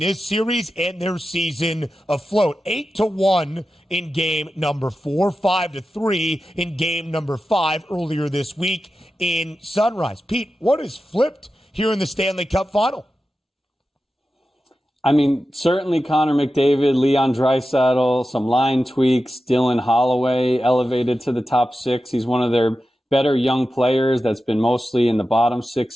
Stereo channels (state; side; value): normal; both; correlation 0.92